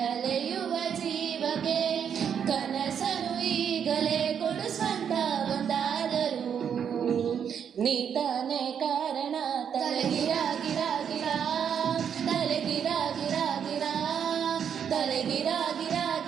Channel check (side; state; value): left; quieter; 8.0 dB